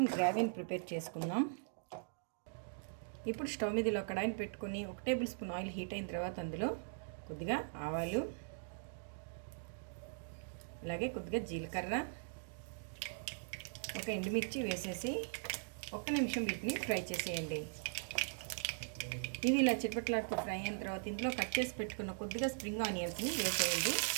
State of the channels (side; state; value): left; silent; digital silence